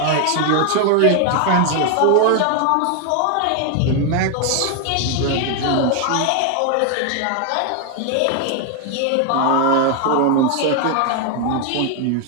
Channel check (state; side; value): different; both; correlation 0.01